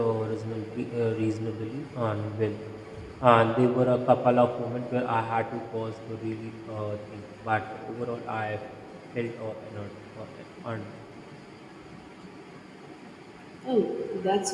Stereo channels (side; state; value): both; identical; correlation 1.00